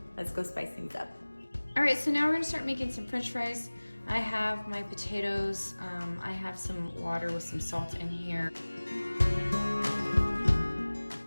let's go spice things up. All right, so now we're gonna start making some French fries. I have my potatoes. I have some water with some salt in here.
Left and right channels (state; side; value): inverted; both; correlation -1.00